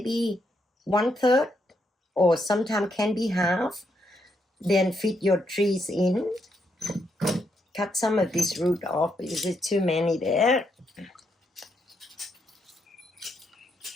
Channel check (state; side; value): normal; both; correlation 0.78